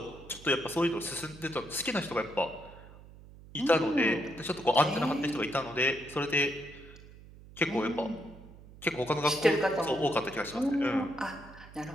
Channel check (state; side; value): noise; right; hum, 19 dB below the sound